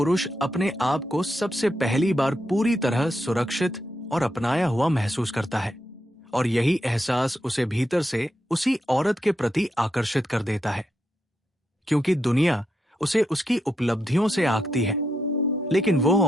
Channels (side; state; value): both; normal; correlation 0.83